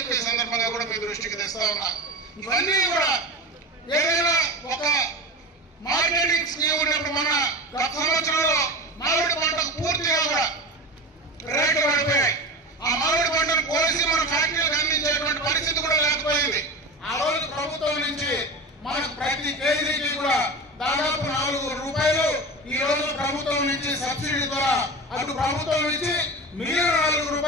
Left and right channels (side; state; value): both; normal; correlation 0.27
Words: సందర్భంగా కూడా మీ దృష్టికి తెస్తా ఉన్నా. ఇవన్నీ కూడా ఏదైనా ఒక మార్కెటింగ్ స్కీమ్ ఉన్నప్పుడు మన గత సంవత్సరంలో మామిడి పంటకు పూర్తిగా కూడా రేట్లు పడిపోయాయి. ఆ మామిడి పంటను కోసి మన ఫ్యాక్టరీలకు అందించేటువంటి పరిస్థితి కూడా లేకపోయింది. ఆ రోజు ప్రభుత్వం నుంచి మనకు ప్రతి కేజీకి కూడా దాదాపు 4 రూపాయలు ఈ రోజు ప్రభుత్వం నుంచి సబ్సిడీ ద్వారా అటు ప్రభుత్వం నుంచి మిగిలిన 4